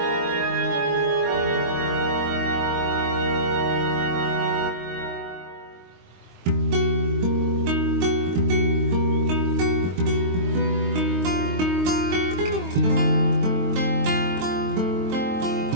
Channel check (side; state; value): left; late; 22 ms